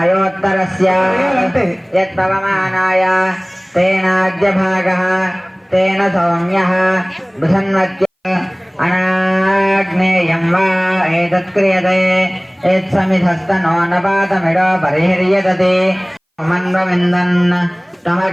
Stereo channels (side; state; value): both; identical; correlation 1.00